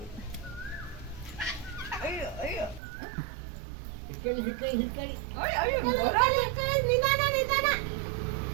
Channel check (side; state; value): left; drops out; at 2.8 s